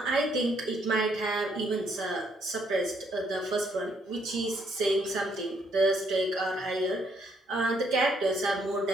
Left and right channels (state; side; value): normal; both; correlation 0.71